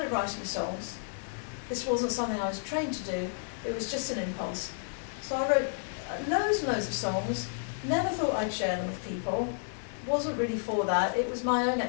writing songs. This wasn't something I was trained to do, it was just an impulse. So I wrote loads and loads of songs, never thought I'd share them with people, wasn't really for that, it was my own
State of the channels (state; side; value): silent; right; digital silence